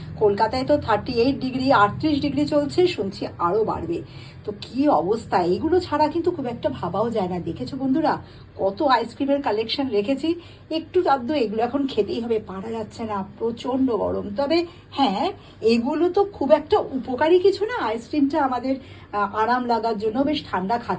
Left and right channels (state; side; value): identical; both; correlation 1.00